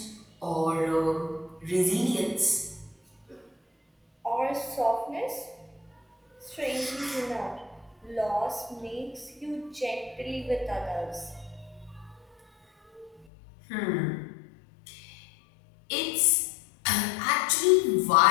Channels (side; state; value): right; drops out; at 13.2 s